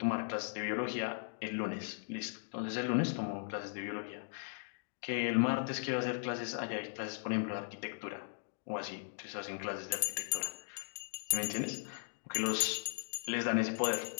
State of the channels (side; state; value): right; silent; digital silence